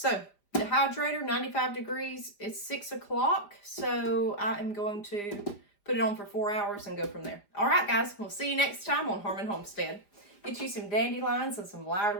dehydrator, 95 degrees. It's 6 o'clock. So I am going to put it on for 4 hours and go from there. All right, guys. We'll see you next time on Homestead. Get you some dandelions and some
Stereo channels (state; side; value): late; right; 5.0 ms